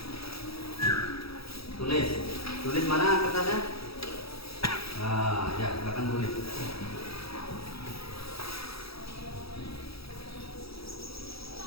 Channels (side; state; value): right; late; 0.77 ms